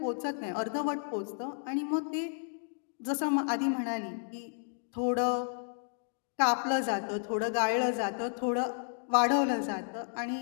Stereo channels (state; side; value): silent; right; digital silence